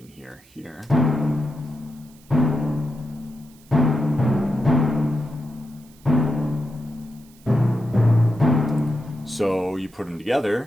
hear here. So you put them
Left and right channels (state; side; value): noise; right; hiss, 27 dB below the sound